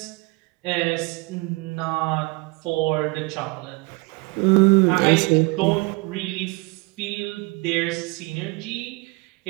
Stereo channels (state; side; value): quieter; left; 26.9 dB